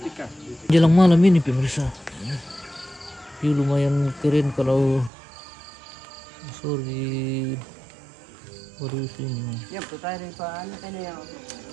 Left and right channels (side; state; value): left; drops out; at 5.1 s